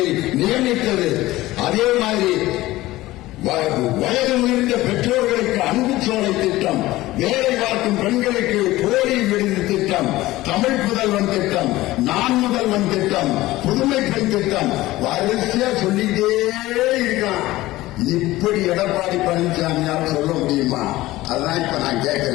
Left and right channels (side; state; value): right; quieter; 17.6 dB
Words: நியமித்தது. அதே மாதிரி வயது முதிர்ந்த பெற்றோர்களுக்கு அன்பு சோலை திட்டம், வேலை பார்க்கும் பெண்களுக்கு போலி விருது திட்டம், தமிழ் புதல்வன் திட்டம், நான் முதல்வன் திட்டம், புதுமை பெண் திட்டம், வரிசையா சொல்லிட்டே இருக்கான். இப்படி எடப்பாடி பழனிசாமியால் சொல்ல முடியுமா? அதான் இப்ப நான்